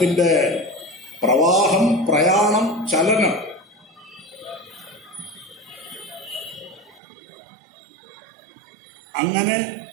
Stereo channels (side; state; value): left; drops out; at 7.0 s